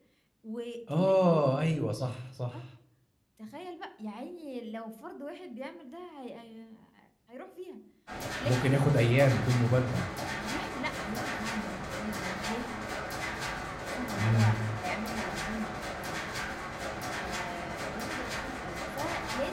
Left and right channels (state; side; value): identical; both; correlation 1.00